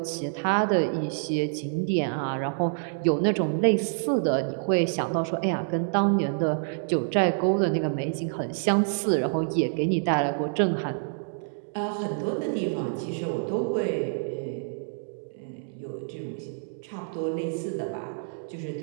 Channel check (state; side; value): silent; left; digital silence